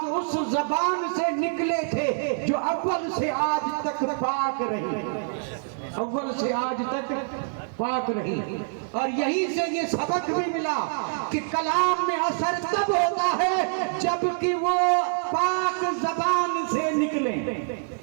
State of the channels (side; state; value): left; silent; 61 dB below the other